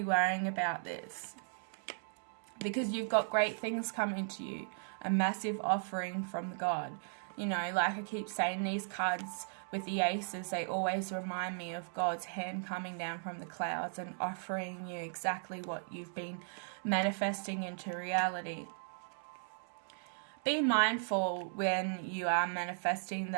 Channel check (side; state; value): left; silent; digital silence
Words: worrying about this, because you've got great things coming to you. a massive offering from God. You know, like I keep saying, these cards with the aces, they always remind me of God's hand coming down from the clouds and offering you exactly what you've been manifesting into reality. Be mindful when you are manifesting